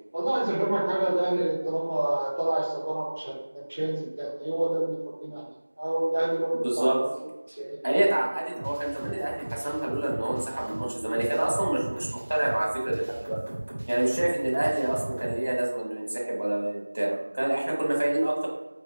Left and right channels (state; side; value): inverted; both; correlation -1.00